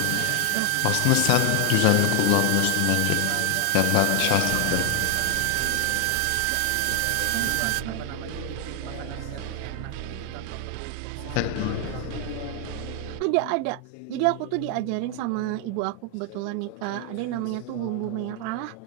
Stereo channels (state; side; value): different; both; correlation 0.00